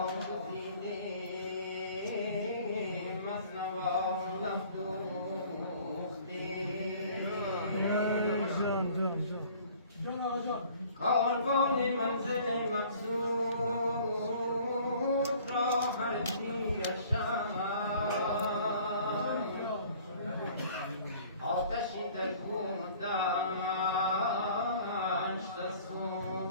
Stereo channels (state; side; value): inverted; both; correlation -0.52